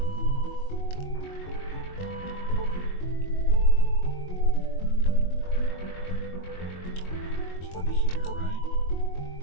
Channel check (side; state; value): right; late; 22 ms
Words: There's one here, right?